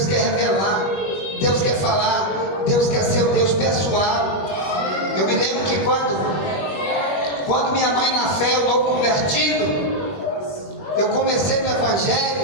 quer revelar, Deus quer falar, Deus quer ser o Deus pessoal. Eu me lembro que quando minha mãe na fé, eu novo convertido, eu comecei no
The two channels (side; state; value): right; late; 21 ms